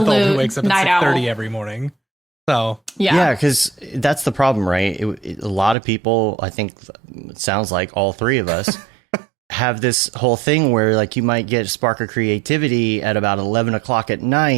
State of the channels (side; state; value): left; drops out; at 5.8 s